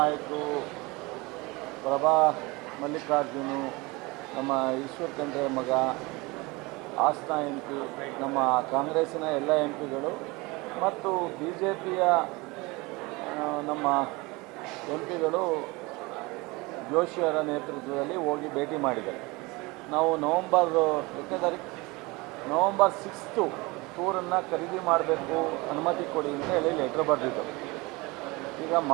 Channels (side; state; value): left; quieter; 24.2 dB